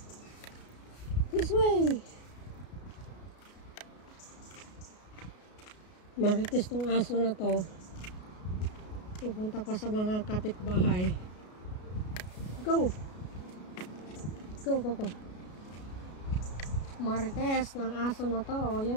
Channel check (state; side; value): late; right; 33 ms